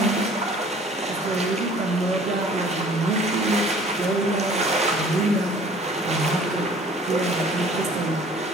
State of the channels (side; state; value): both; normal; correlation 0.51